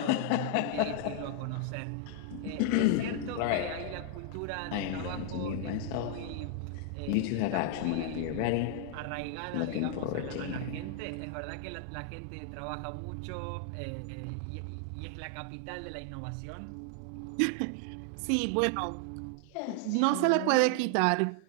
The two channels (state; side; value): different; both; correlation 0.00